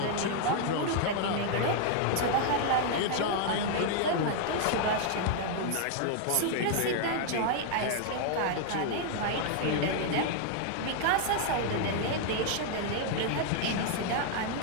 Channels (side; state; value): both; different; correlation 0.00